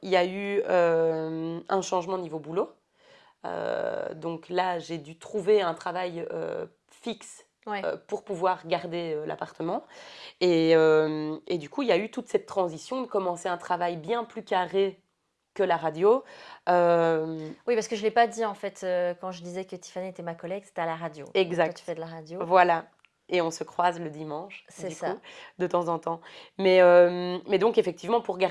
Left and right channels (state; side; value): identical; both; correlation 1.00